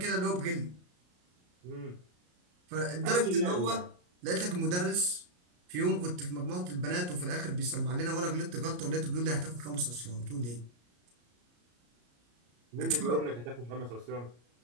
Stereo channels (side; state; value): left; late; 34 ms